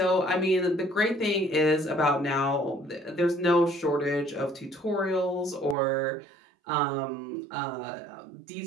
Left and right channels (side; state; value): left; drops out; at 5.8 s